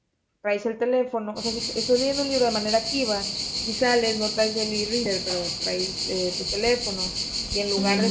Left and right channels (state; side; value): identical; both; correlation 1.00